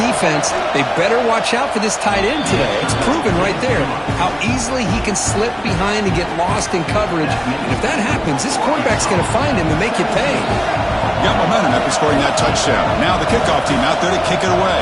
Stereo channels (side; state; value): both; identical; correlation 1.00